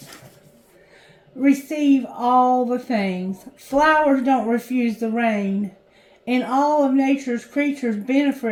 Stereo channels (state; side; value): identical; both; correlation 1.00